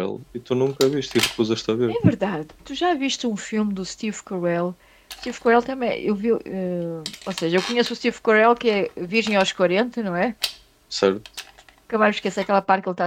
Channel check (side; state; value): both; identical; correlation 1.00